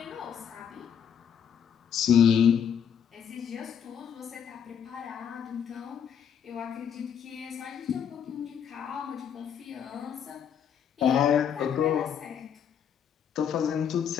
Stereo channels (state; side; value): quieter; right; 8.1 dB